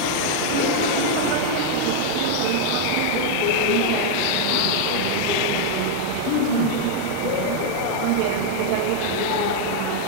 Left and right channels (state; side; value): different; both; correlation 0.00